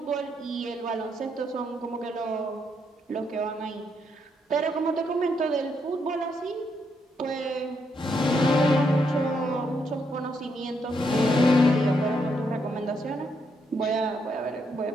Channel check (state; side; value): normal; both; correlation 0.77